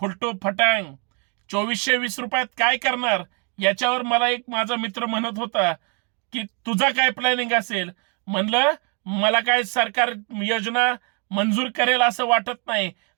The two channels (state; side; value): quieter; left; 37.0 dB